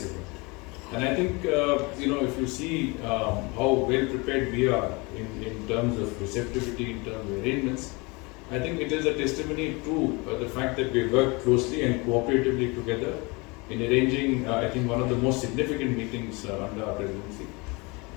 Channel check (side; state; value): right; quieter; 27.1 dB